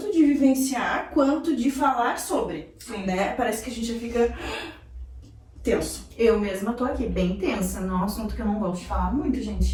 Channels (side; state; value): both; identical; correlation 1.00